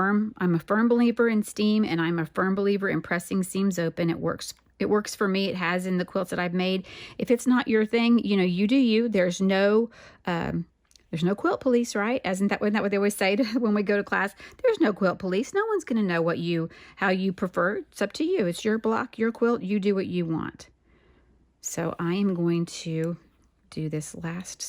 believer in steam, and I'm a firm believer in pressing seams open. It works. It works for me. It has in the quilts that I've made. If it's not your thing, you know, you do you. There's no quilt police, right? Isn't that what they always say when we go to class? There's no quilt police. No one's going to know how you prefer. It's up to you. It's your block, your quilt. You do what you want. So I am going to do this last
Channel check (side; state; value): both; identical; correlation 1.00